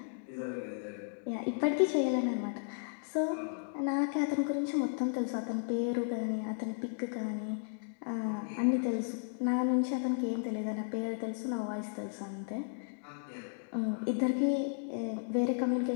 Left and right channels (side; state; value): right; silent; digital silence